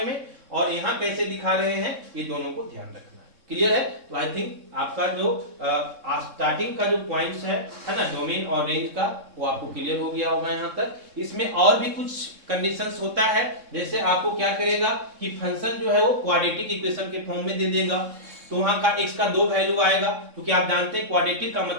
में, और यहाँ कैसे दिखा रहे हैं, ये दोनों को ध्यान रखना है। क्लियर है? तो आई थिंक आपका जो स्टार्टिंग का जो पॉइंट्स है ना, डोमेन और रेंज का, वो आपको क्लियर हो गया होगा यहाँ तक। इसमें और भी कुछ कंडीशंस होता है, जैसे आपको क्या करेगा कि फंक्शन जो है वो क्वाड्रेटिक इक्वेशन के फॉर्म में दे देगा, तो वहां का x का 2 वैल्यू आएगा, क्योंकि आप जानते हैं क्वाड्रेटिक का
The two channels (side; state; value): left; late; 3.6 ms